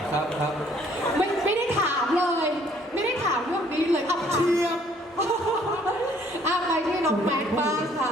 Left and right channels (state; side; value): normal; both; correlation 0.61